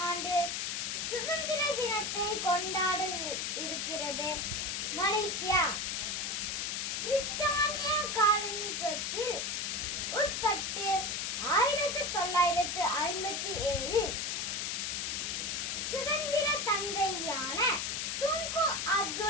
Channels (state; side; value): noise; left; hiss, 1 dB below the sound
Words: ஆண்டு சுதந்திர தினத்தை கொண்டாட இருக்கிறது மலேசியா. பிரித்தானிய காலனித்துவத்தில் உட்பட்டு 1957 சுதந்திர தந்தையான துங்கு